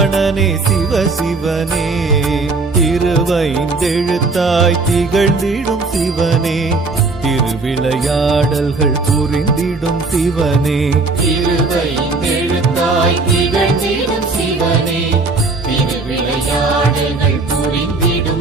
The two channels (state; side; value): quieter; left; 3.7 dB